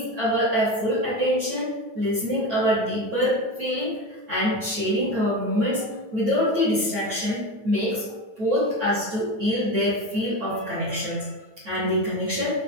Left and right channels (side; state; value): left; late; 9.3 ms